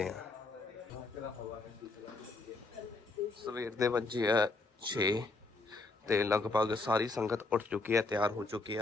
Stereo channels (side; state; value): right; quieter; 3.5 dB